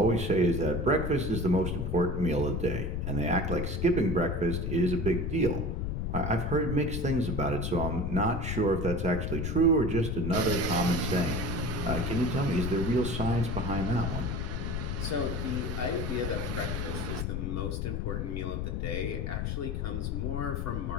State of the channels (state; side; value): noise; left; rumble, 2 dB below the sound